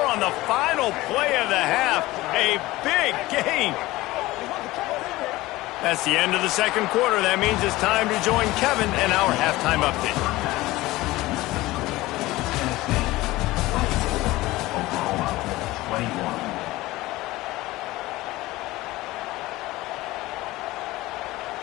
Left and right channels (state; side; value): quieter; right; 18.7 dB